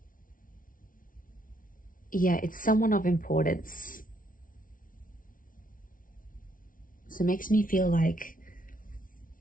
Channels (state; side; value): late; right; 0.39 ms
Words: someone of importance. So it makes me feel like